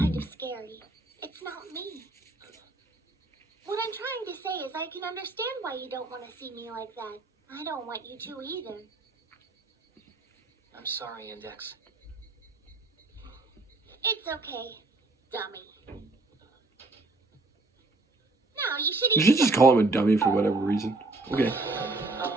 of scary. It's not me. What I'm trying to say is I can understand why you don't want to see me like that. I don't want you to either. I'm sorry, Index. It's okay, dummy. No, you should You eat should just call him a dummy for whatever reason. Okay.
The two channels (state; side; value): quieter; left; 3.2 dB